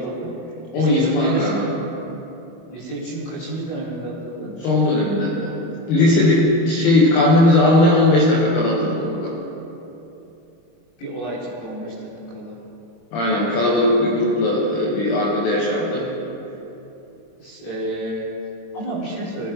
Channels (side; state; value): right; late; 24 ms